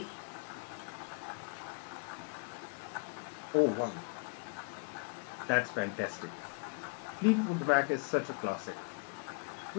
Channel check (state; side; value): quieter; right; 31.6 dB